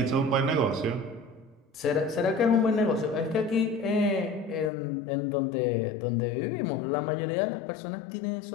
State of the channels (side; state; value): right; drops out; at 4.7 s